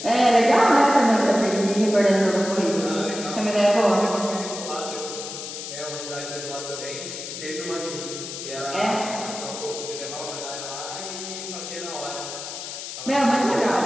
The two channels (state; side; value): noise; left; hiss, 8 dB below the sound